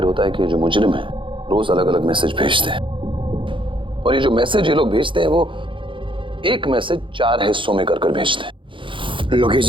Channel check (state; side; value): late; left; 0.25 ms